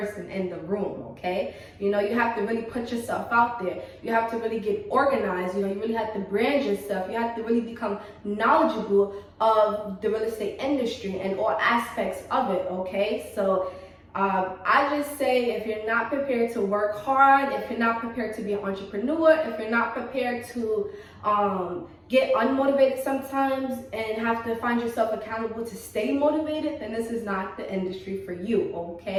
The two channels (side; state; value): both; identical; correlation 1.00